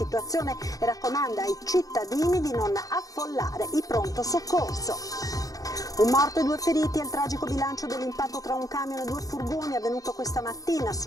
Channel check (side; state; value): right; late; 0.17 ms